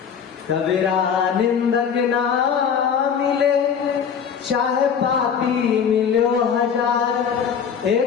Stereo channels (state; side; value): quieter; right; 7.3 dB